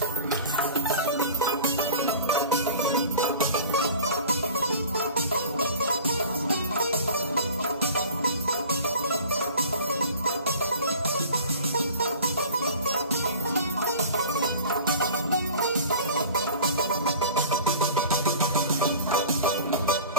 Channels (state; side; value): inverted; both; correlation -0.42